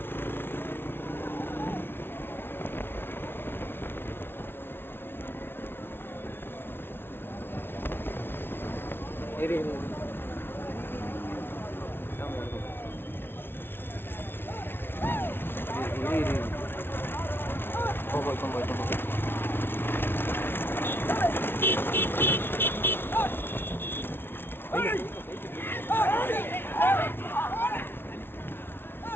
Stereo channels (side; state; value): right; late; 0.11 ms